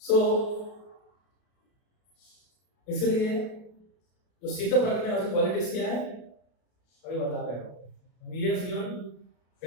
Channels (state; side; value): late; right; 33 ms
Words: सो इसलिए जो सिद्ध प्रज्ञा है उसकी क्वालिटीज क्या है अभी बता रहे हो। He has given